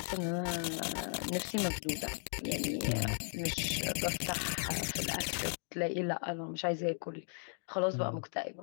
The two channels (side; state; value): right; silent; 54 dB below the other